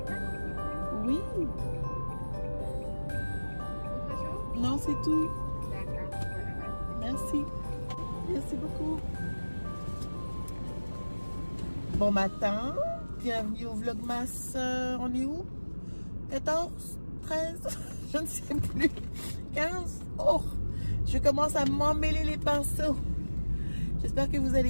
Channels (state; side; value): inverted; both; correlation -1.00